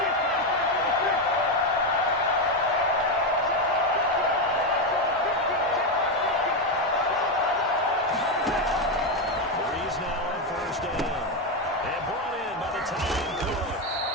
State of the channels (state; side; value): normal; both; correlation 0.08